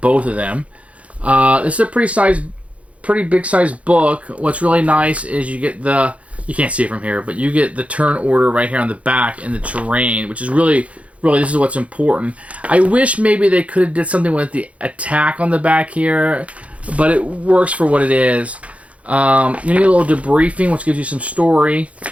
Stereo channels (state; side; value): late; left; 0.064 ms